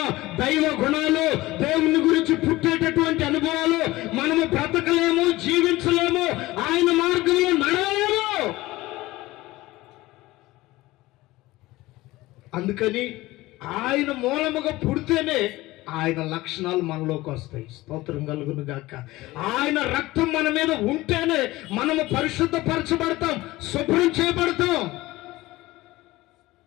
దైవ గుణాలు, దేవుని గురించి పుట్టేటటువంటి అనుభవాలు మనము బ్రతకలేము, జీవించలేము, ఆయన మార్గంలో నడవలేము. అందుకని ఆయన మూలముగా పుడితేనే ఆయన లక్షణాలు మనలోకి వస్తాయి. స్తోత్రం కలుగును గాక. ఆయన రక్తం మన మీద ఉంటేనే మనము పరిశుద్ధపరచబడతాం, శుభ్రం చేయబడతాం.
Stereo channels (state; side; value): quieter; right; 18.7 dB